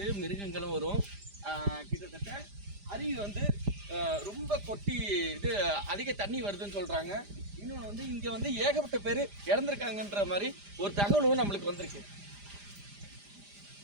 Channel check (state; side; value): late; left; 5.0 ms